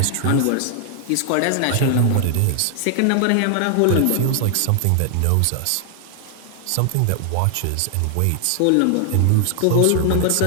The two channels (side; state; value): both; different; correlation 0.00